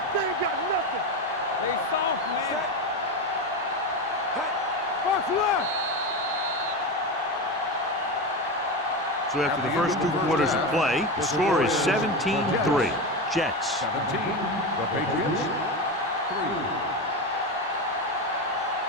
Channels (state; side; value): normal; both; correlation 0.18